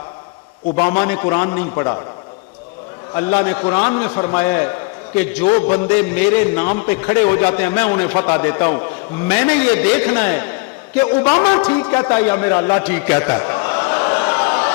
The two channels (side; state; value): right; quieter; 29.9 dB